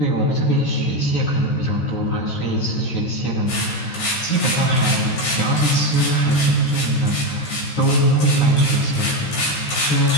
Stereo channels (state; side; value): late; right; 13 ms